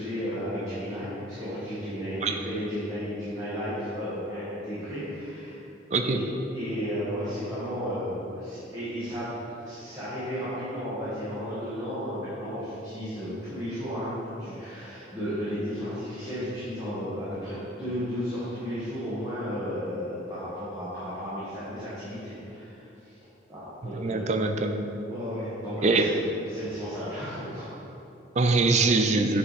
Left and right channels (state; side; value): normal; both; correlation 0.46